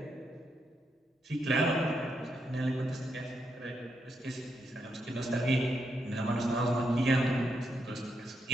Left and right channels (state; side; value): normal; both; correlation 0.81